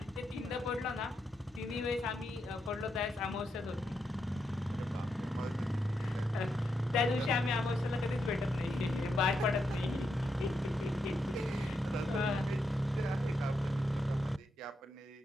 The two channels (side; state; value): both; normal; correlation 0.82